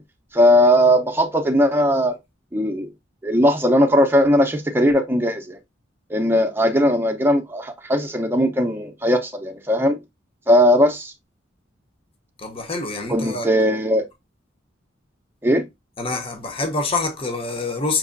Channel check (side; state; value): both; normal; correlation 0.58